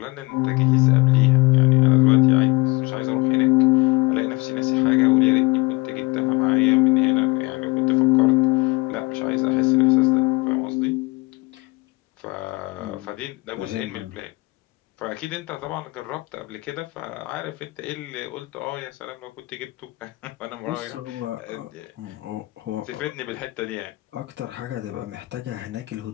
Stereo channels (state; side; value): quieter; right; 23.6 dB